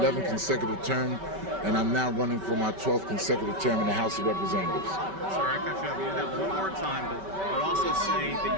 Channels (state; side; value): late; left; 5.2 ms